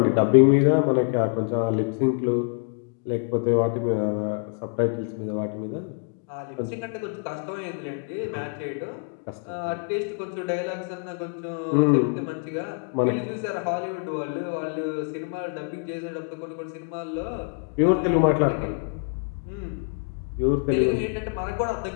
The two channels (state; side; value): quieter; right; 39.1 dB